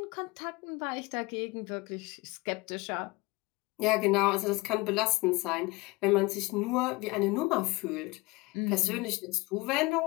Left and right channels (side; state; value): right; quieter; 23.4 dB